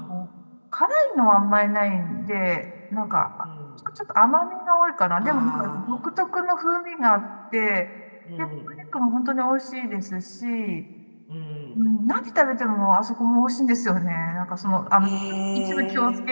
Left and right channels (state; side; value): inverted; both; correlation -1.00